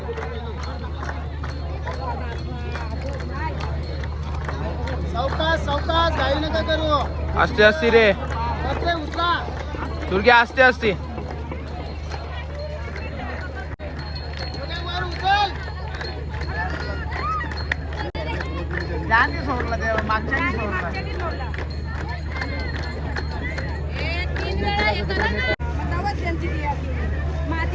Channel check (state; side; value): identical; both; correlation 1.00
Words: सावकाश घाई नका करू असते असते रे उचला तुर्की असते असते सोडला तेव्हा मागच्या सोडला